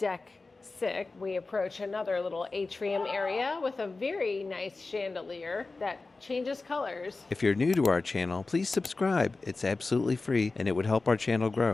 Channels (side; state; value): right; quieter; 3.6 dB